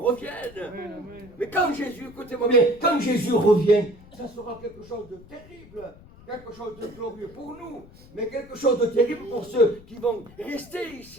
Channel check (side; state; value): left; noise; rumble, 22 dB below the sound